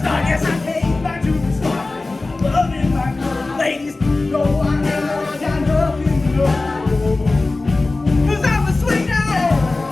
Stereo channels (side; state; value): right; quieter; 3.3 dB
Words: Yes, I came back to the start. Loving my good ladies. No, I never got nothing to know. 'Cause I'm a sweet